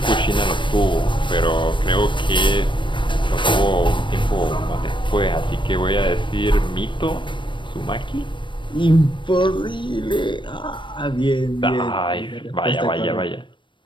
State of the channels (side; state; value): right; late; 0.23 ms